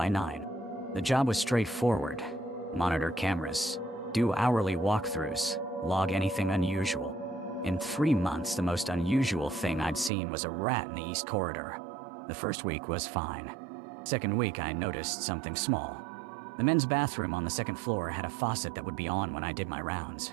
9. The job was straightforward. Monitor cameras, do hourly walkthroughs, log anything unusual. In 3 months, the most unusual thing I'd seen was a rat in the East Corridor. The first week was fine. Second week, I noticed something small. The men's bathroom on the second floor had a faucet that would be on when I did my rounds,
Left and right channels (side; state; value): left; drops out; at 10.1 s